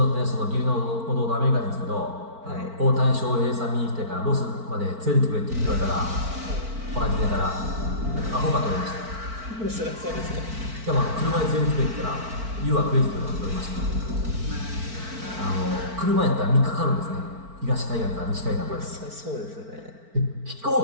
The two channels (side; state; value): left; late; 4.5 ms